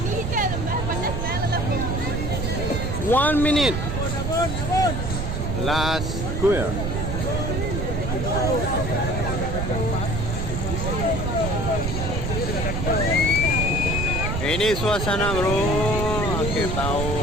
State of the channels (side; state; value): right; noise; rumble, 2 dB below the sound